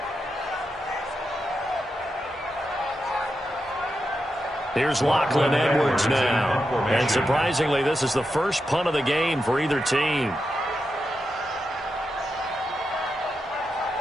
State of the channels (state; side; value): normal; both; correlation 0.87